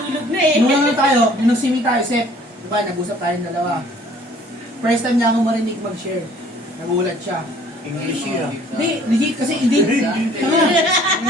na eh. Nung ano tayo, nung nagsimi tayo, Sep, diba, nag-usap tayong dalawa. First time niya ako marinig mag-share. Nagulat siya. English yun. Hindi, legit kasi hindi.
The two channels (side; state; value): both; normal; correlation 0.55